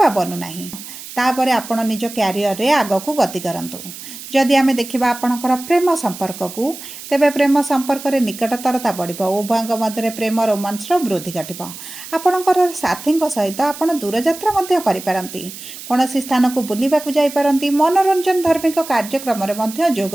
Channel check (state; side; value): noise; right; hiss, 13 dB below the sound